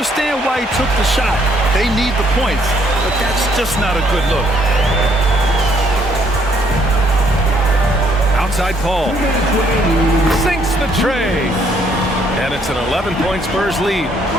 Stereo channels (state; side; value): normal; both; correlation 0.67